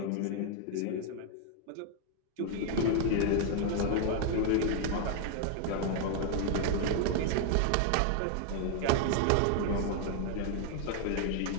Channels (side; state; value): both; different; correlation 0.00